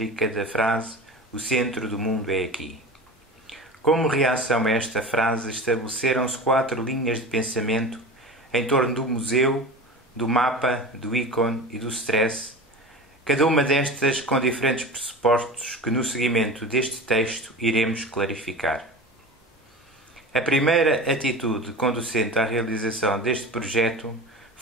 da frase "O centro do mundo é aqui". Como reação a esta frase, estabeleceram-se 4 linhas de pensamento em torno do museu, do mapa, do ícone e do stress, cada uma destas com diferentes pressupostos que no seguimento deste texto iremos clarificar. A primeira atitude conducente à realização deste projeto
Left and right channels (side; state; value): both; normal; correlation 0.33